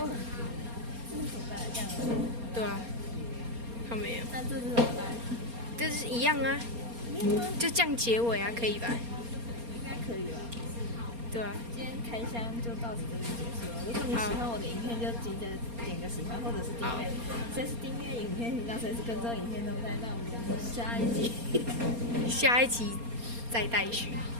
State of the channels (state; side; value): late; left; 4.3 ms